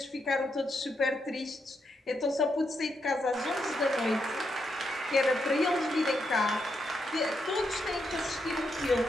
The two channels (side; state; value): both; normal; correlation 0.81